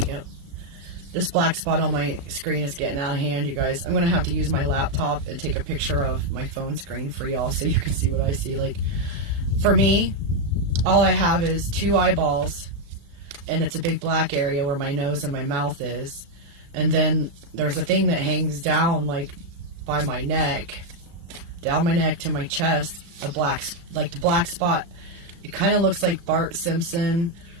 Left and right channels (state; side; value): late; left; 35 ms